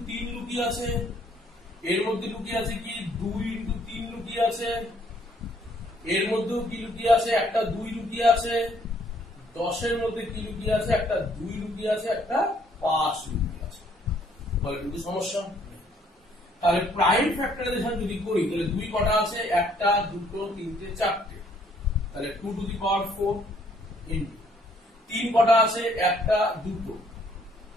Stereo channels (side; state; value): both; normal; correlation 0.65